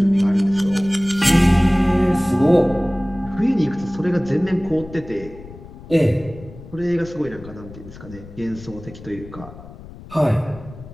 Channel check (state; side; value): noise; left; rumble, 17 dB below the sound